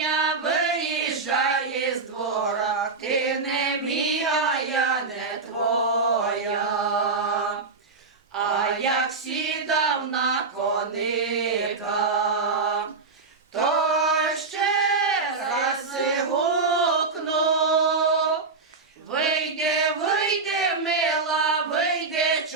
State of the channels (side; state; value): left; quieter; 4.2 dB